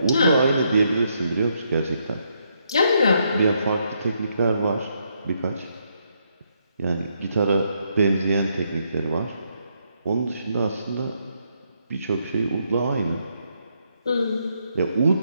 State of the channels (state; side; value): inverted; both; correlation -0.76